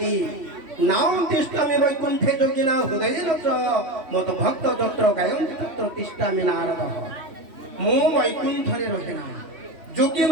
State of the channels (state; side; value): late; left; 3.1 ms